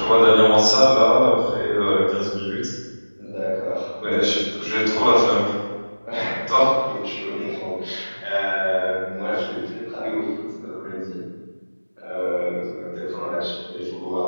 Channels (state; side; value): inverted; both; correlation -1.00